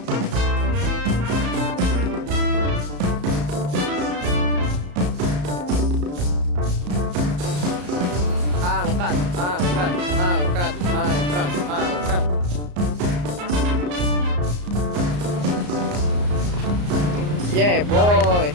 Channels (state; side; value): late; left; 34 ms